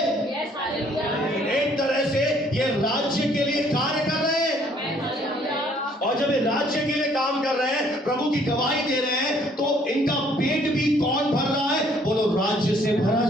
एक तरह से ये राज्य के लिए कार्य कर रहे हैं, और जब ये राज्य के लिए काम कर रहे हैं, प्रभु की गवाही दे रहे हैं, तो इनका पेट भी कौन भर रहा है? बोलो, राज्य से भरा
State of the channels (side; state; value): both; normal; correlation 0.62